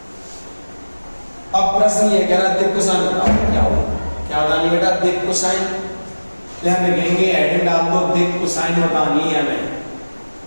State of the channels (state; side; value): inverted; both; correlation -1.00